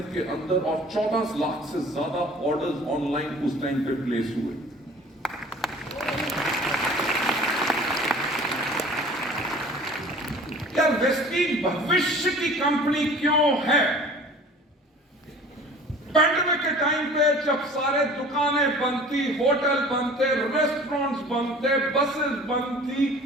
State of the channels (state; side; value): normal; both; correlation 0.46